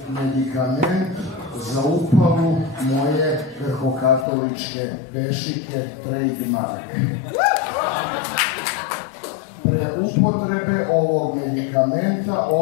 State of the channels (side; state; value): right; drops out; at 4.2 s